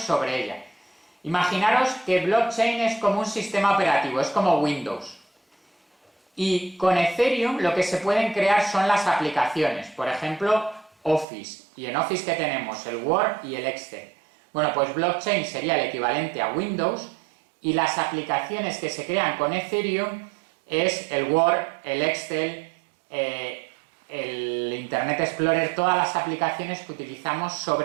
sobre ella. Imaginaros que blockchain es como un sistema operativo, es como Windows. Y con Ethereum lo que se pueden crear son las aplicaciones, por ejemplo, Office. Y en Office, ¿qué tenemos? El Word y el Excel. Bueno, pues blockchain sería el equivalente a Windows y las aplicaciones que se crean con Ethereum es el Word, el Excel, el Internet Explorer, todas las aplicaciones que utilizamos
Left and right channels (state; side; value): drops out; left; at 11.2 s